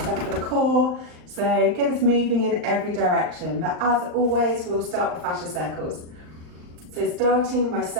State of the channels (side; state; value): left; late; 39 ms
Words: for the core. So get us moving in every direction. But as always, we'll start with fascia circles. So starting by